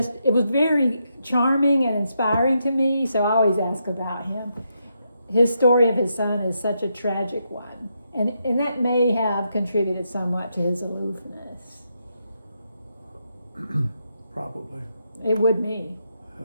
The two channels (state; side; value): inverted; both; correlation -0.82